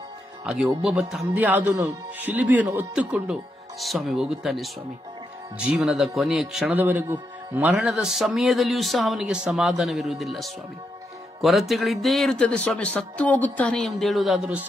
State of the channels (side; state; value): both; normal; correlation 0.82